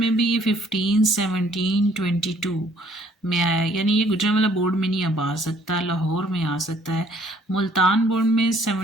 भी ये 15, 17, 22 में आया है, यानी ये गुजरांवाला बोर्ड में नहीं अब आ सकता, लाहौर में आ सकता है। मुल्तान बोर्ड में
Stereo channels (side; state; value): both; normal; correlation 0.61